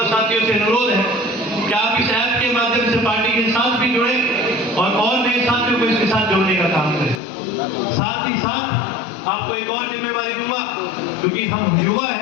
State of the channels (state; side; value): drops out; right; at 7.2 s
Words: साथियों से अनुरोध है कि आप इस ऐप के माध्यम से पार्टी के साथ भी जुड़े और नए साथियों को इसके साथ जोड़ने का काम करें। साथ ही साथ आपको एक और जिम्मेवारी दूंगा, क्योंकि हम युवा